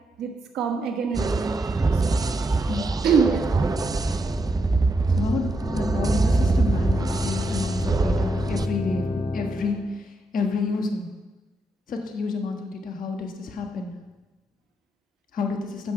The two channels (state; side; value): normal; both; correlation 0.81